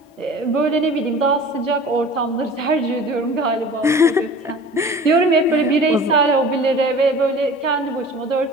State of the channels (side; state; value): both; normal; correlation 0.41